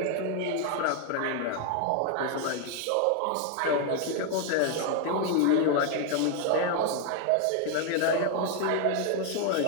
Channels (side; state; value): both; different; correlation 0.00